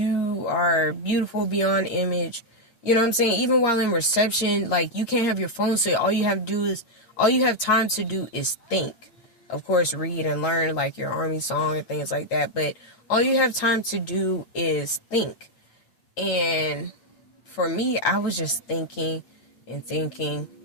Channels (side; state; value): right; late; 8.7 ms